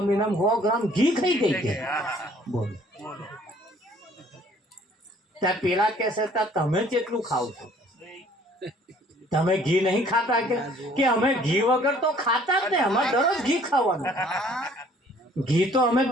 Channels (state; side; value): normal; both; correlation 0.57